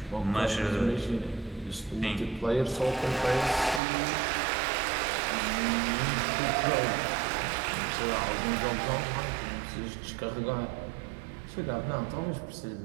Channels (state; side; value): drops out; left; at 3.8 s